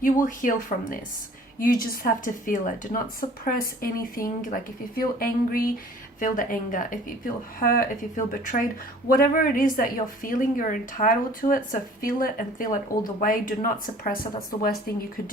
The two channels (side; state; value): both; normal; correlation 0.50